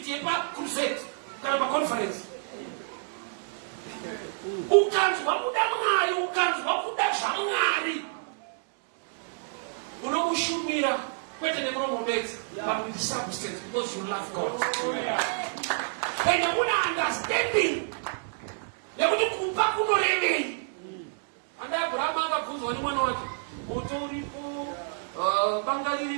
yepaCrusade kana paconference. Ukanzwa kuda Mwari, ukanzwa kuda zvaMwari, unomushumira kwete nemuromo bedzi, but with substance because you love God. And una understanding yekuti kupa kunorevei. Anda Abraham akabvunzwa nemwana wake, moto uripo, banga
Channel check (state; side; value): silent; left; digital silence